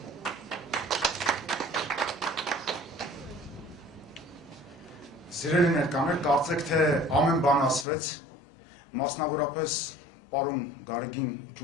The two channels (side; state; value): right; drops out; at 7.9 s